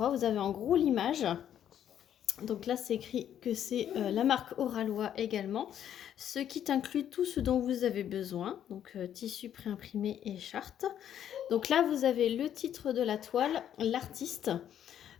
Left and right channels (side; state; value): right; quieter; 10.1 dB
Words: vous avez en gros l'image. Donc là c'est écrit que c'est la marque Oraloa également. Ce kit inclut tout ce dont vous avez besoin, donc tissu préimprimé et charte. Donc là vous avez le titre de la toile, l'artiste.